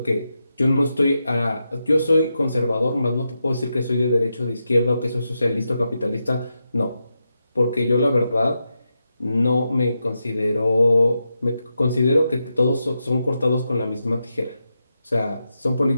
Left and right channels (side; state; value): both; inverted; correlation -0.87